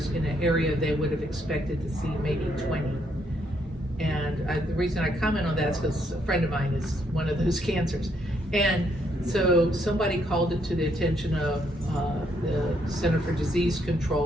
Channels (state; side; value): normal; both; correlation 0.73